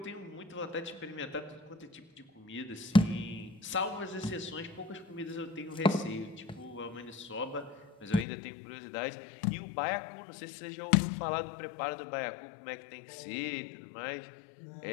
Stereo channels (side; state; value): right; drops out; at 8.2 s